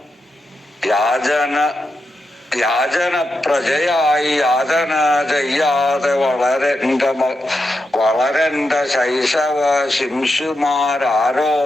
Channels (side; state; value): both; normal; correlation 0.86